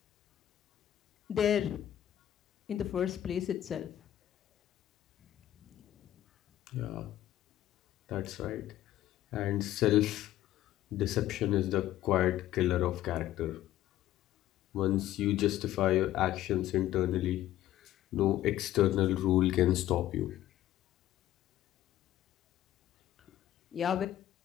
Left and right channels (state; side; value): quieter; right; 13.2 dB